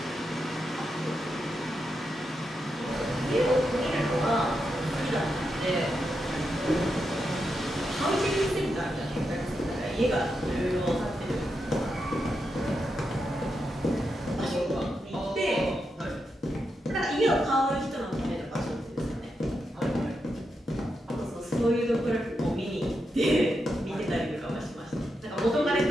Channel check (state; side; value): normal; both; correlation 0.85